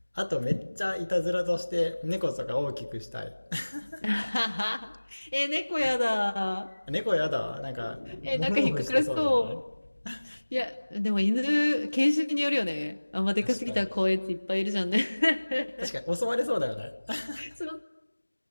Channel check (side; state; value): both; inverted; correlation -1.00